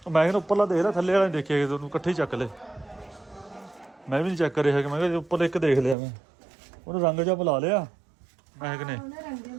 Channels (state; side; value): drops out; left; at 6.0 s